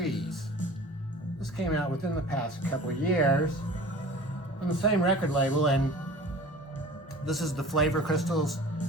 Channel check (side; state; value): both; normal; correlation 0.42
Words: This came out within the past couple of years on the same record label, and this is the Flavor Crystals